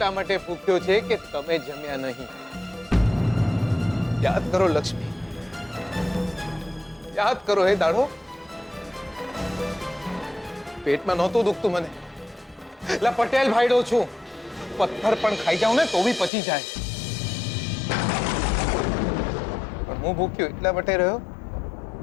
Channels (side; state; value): right; drops out; at 16.3 s